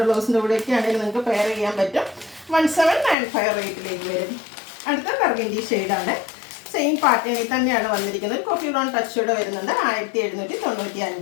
ബ്ലൗസിൻ്റെ കൂടെയൊക്കെ ആണെങ്കിൽ നിങ്ങൾക്ക് പെയർ ചെയ്യാൻ പറ്റും. 1795 റേറ്റിലേക്ക് വരും. അടുത്ത ബർഗൻഡി ഷെയ്ഡാണ്. സെയിം പാറ്റേണിൽ തന്നെയാണ് വന്നിരിക്കുന്നത്. ഒരു കോഫി ബ്രൗൺ ടച്ചോടെ വരുന്നുണ്ട്.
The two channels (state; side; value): drops out; right; at 3.2 s